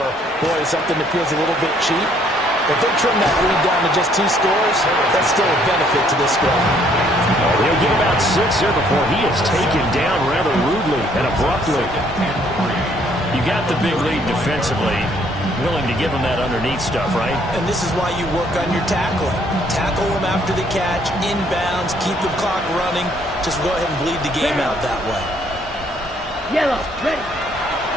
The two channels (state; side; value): normal; both; correlation 0.65